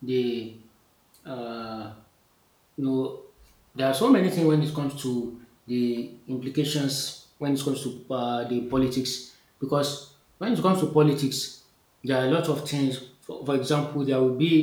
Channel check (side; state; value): both; identical; correlation 1.00